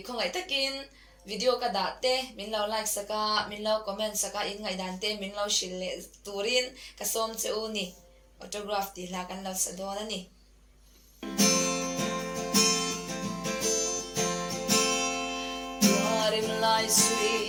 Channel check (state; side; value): identical; both; correlation 1.00